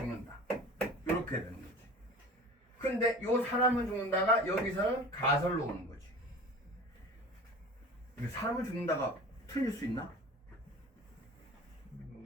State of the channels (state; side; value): normal; both; correlation 0.39